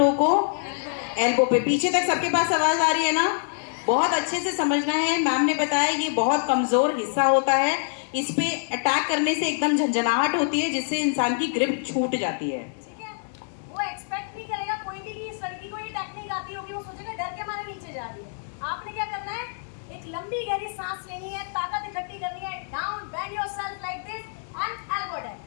को? एल्बो पे। पीछे तक सबके पास आवाज आ रही है ना? बहुत अच्छे से समझना है। मैम ने बताया ये बहुत कमजोर हिस्सा होता है, इस पे अटैक करने से एकदम झंझनाहट होती है जिससे इंसान की ग्रिप छूट जाती है, ठीक है। वो एक्सपेक्ट नहीं करेगा कोई भी कि इस लड़की को ये टेक्निक आती होगी, वो सोचेगा डर के मारे नीचे जा रही है। आपने क्या करना है, एक लंबी गहरी सांस लेनी है, ताकत इकट्ठी करनी है, down bend yourself like this and elbow down.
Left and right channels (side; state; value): right; silent; digital silence